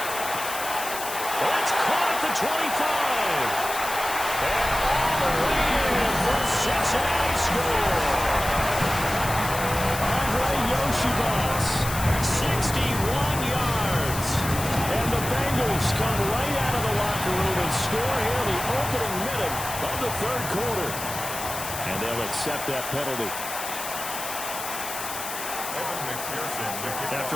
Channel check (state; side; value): noise; left; hiss, 7 dB below the sound